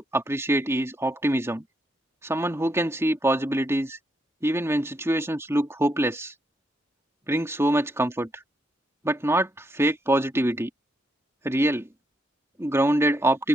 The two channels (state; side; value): normal; both; correlation 0.78